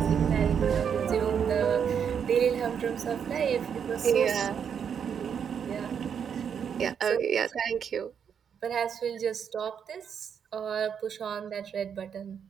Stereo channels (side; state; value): left; quieter; 7.6 dB